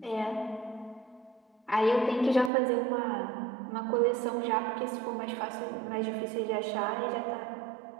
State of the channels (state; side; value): drops out; left; at 2.5 s